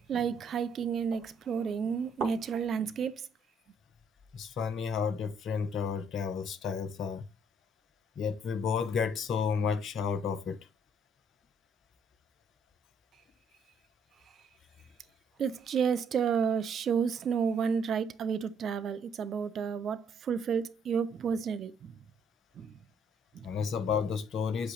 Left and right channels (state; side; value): normal; both; correlation 0.66